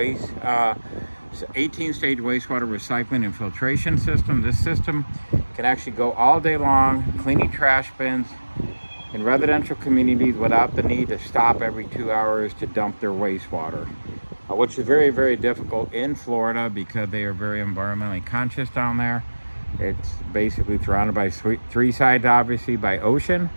wastewater recycling and filtration system. This system can actually go all day long cleaning trash bins in residential communities without the need to stop every 2 hours to dump their wastewater, which is very, very difficult in Florida because they are very environmentally conscious down there. It's basically surrounded by three sides, obviously, by ocean,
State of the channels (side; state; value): both; inverted; correlation -1.00